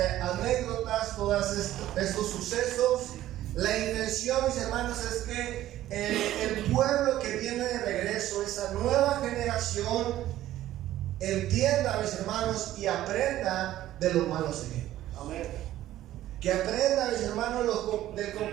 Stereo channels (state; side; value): quieter; left; 13.8 dB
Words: anécdotas, todos estos sucesos, la intención, mis hermanos, es que el pueblo que viene de regreso, esa nueva generación, entienda, mis hermanos, y aprenda de los malos ejemplos. Amén. Que aprenda, mis hermanos, del